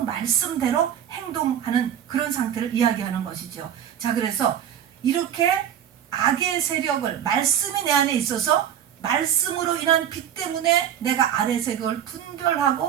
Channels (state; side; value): quieter; left; 9.6 dB